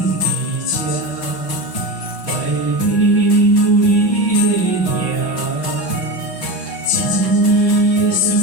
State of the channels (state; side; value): late; right; 5.3 ms